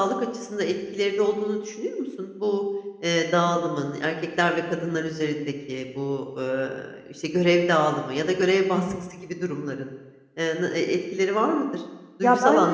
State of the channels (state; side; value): identical; both; correlation 1.00